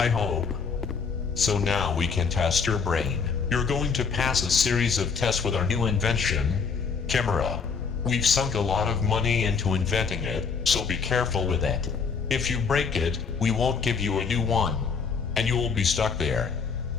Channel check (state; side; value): quieter; right; 5.6 dB